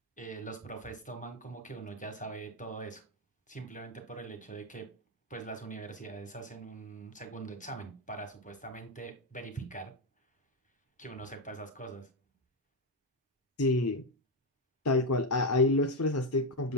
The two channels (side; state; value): both; normal; correlation 0.07